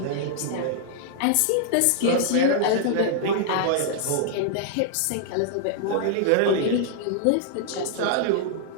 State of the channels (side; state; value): both; different; correlation -0.01